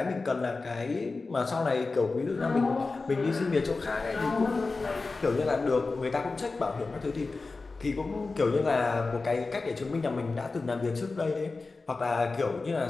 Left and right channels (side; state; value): right; quieter; 3.8 dB